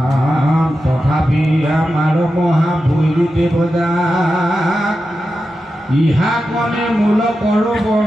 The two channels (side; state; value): both; normal; correlation 0.91